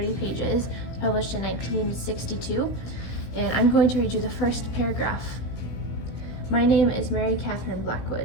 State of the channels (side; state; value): right; late; 17 ms